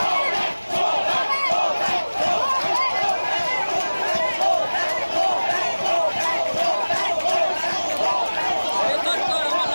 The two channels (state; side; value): inverted; both; correlation -1.00